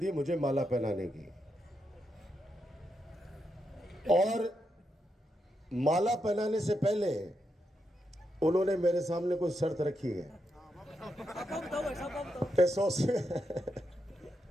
मुझे माला पहनाने की, और माला पहनाने से पहले उन्होंने मेरे सामने कोई शर्त रखी है।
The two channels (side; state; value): both; normal; correlation 0.83